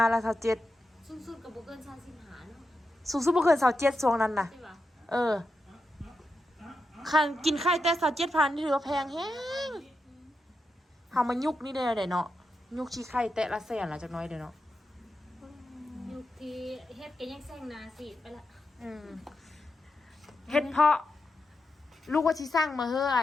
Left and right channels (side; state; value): both; normal; correlation 0.88